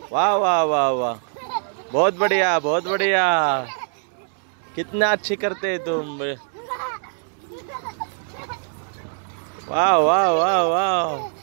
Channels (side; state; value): left; silent; 64 dB below the other